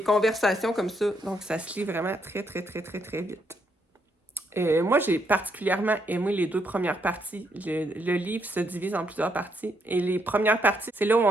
conversations comme ça, donc ça se lit vraiment très vite. Moi, j'ai particulièrement aimé les 2 premières parties. Le livre se divise en plusieurs parties. Et les premières parties, c'est là où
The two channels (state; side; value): normal; both; correlation 0.76